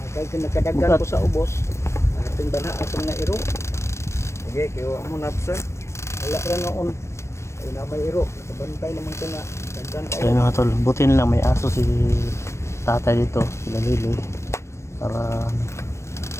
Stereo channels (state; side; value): late; right; 0.13 ms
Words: Kay nakadagan ko sa ubos. Ating bana atong nga iro. Okay, kayo mo na sir. Wala ra noon. Ay na may iro. Nakabantay naman ko nga. Dagdan kayo. Ayun mga tol, buti nila may aso si tatay dito, sila Liloy. Para